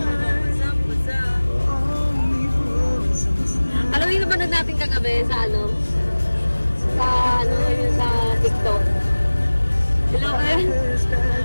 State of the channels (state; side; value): inverted; both; correlation -1.00